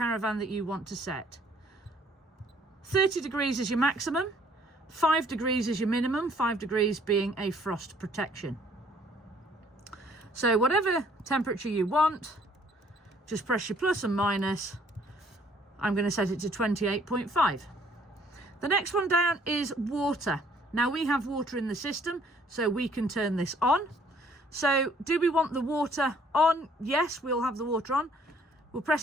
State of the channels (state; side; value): normal; both; correlation 0.61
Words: that you want to set. 30 degrees is your maximum, 5 degrees is your minimum, 5 degrees being a frost protection. So whatever temperature you want, just press your plus and minus. I'm going to set it to 28.5. The next one down is water. Now we have water in the system, so we can turn this on. So do we want the water on? Yes, we'll have the water on. We'll